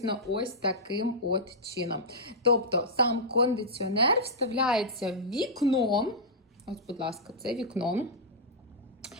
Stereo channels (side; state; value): both; normal; correlation -0.09